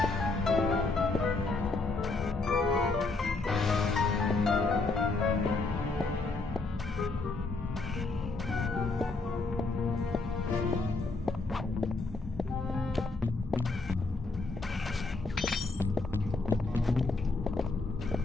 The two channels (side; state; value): right; quieter; 3.6 dB